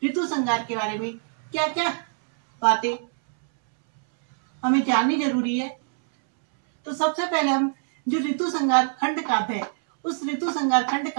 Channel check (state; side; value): silent; left; 63 dB below the other